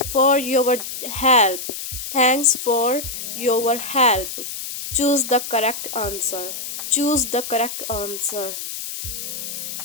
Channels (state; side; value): noise; left; hiss, 7 dB below the sound